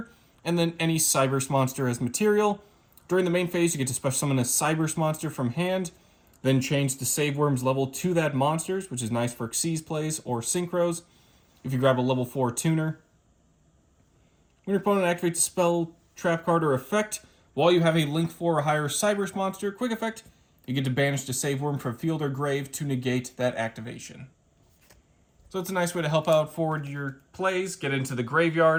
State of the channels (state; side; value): identical; both; correlation 1.00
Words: and then any Cyberse monster as material. During the main phase, you get to special summon a Cyberse monster from hand, then change Deceive Worm's level to that monster's, which is nice for Xyz plays or Synchros if you grab a level 4 tuner. When your opponent activates a spell, trap card, or effect, while you have a Link 4 or higher Cyberse monster, quick effect, you get to banish Deceive Worm from field or grave to negate that activation. So it's a nice way to help out forward your plays, get into the